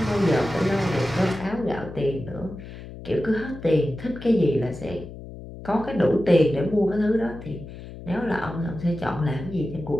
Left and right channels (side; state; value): left; noise; hum, 13 dB below the sound